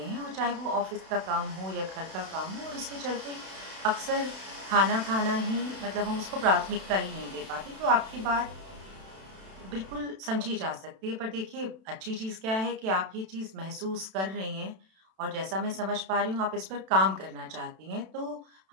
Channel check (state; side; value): late; left; 32 ms